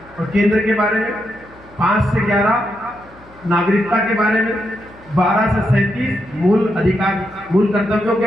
और केंद्र के बारे में, 5 से 11 नागरिकता के बारे में, 12 से 37 मूल कर्तव्यों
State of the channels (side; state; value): left; noise; hum, 24 dB below the sound